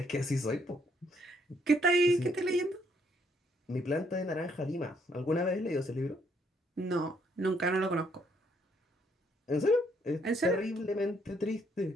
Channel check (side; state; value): both; normal; correlation 0.70